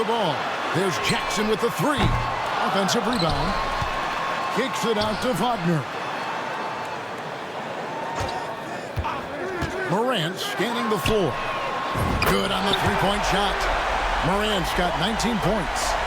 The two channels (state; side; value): identical; both; correlation 1.00